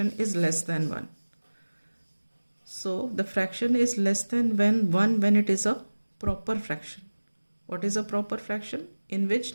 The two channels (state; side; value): inverted; both; correlation -1.00